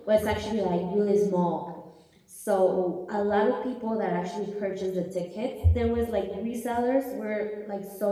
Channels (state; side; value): identical; both; correlation 1.00